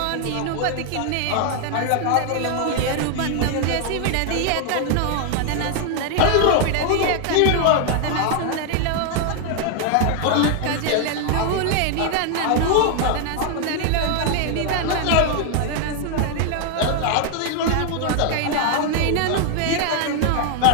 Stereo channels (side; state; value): both; different; correlation 0.00